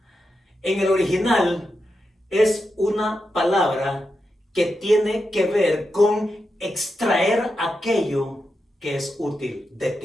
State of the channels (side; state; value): both; normal; correlation 0.87